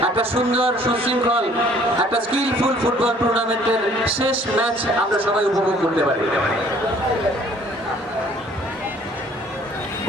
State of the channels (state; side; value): normal; both; correlation 0.57